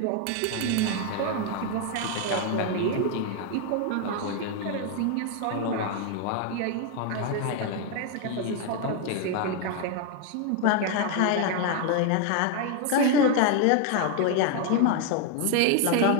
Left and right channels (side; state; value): both; different; correlation 0.01